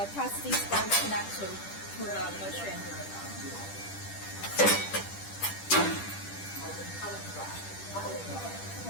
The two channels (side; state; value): right; late; 10 ms